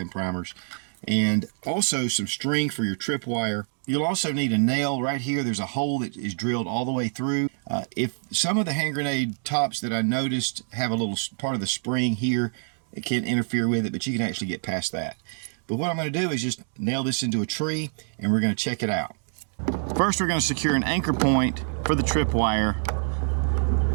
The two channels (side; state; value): left; silent; 61 dB below the other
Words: primers. And also some string for your tripwire. You'll also need a nail right here. There's a hole that is drilled all the way through. If some of the hand grenade tops that I noticed have a little part of the spring here, it can interfere with it, but you can actually get past that. But what I'm going to do is just nail this into a tree, and we're going to check it out. First, we're going to secure an anchor point for the tripwire.